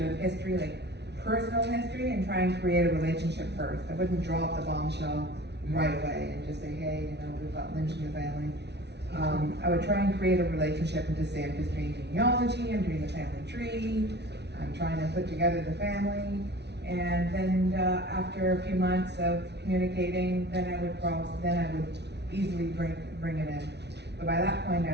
of history, like personal history, and try and create a relationship first. I wouldn't drop the bombshell right away and just say, hey, we've got Lynch in your family. I would try and create a relationship and just say, I'm just doing genealogy, I'm doing the family tree, I'm trying to put together the family. And then after a few months of communicating, then I would easily bring it in. But by that point,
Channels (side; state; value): left; late; 0.50 ms